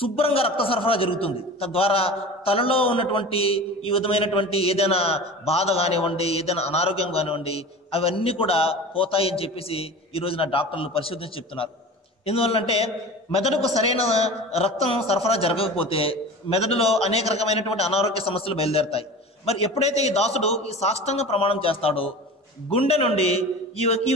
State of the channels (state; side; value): normal; both; correlation 0.35